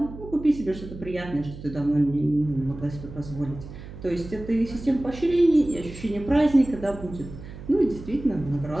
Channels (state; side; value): noise; right; hum, 13 dB below the sound